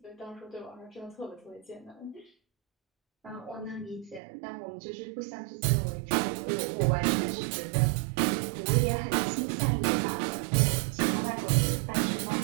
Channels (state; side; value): drops out; left; at 4.2 s